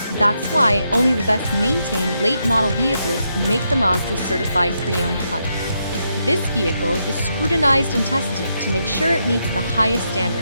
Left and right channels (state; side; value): inverted; both; correlation -0.81